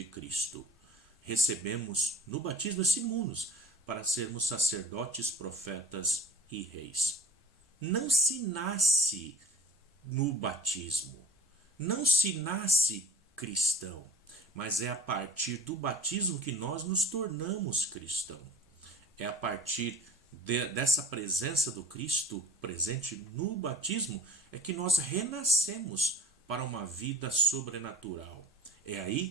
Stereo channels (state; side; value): normal; both; correlation 0.41